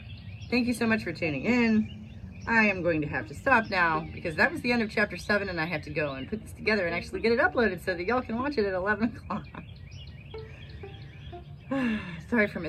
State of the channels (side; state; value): both; identical; correlation 1.00